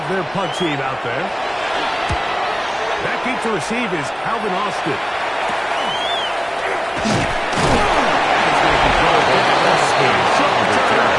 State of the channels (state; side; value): identical; both; correlation 1.00